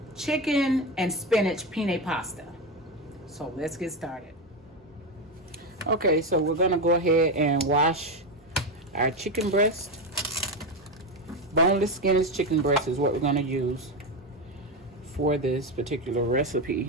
chicken and spinach penne pasta. So let's get started. Okay, so we're gonna go ahead and wash our chicken breast. Boneless, skinless chicken breast is what we're gonna use for this particular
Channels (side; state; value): both; normal; correlation 0.13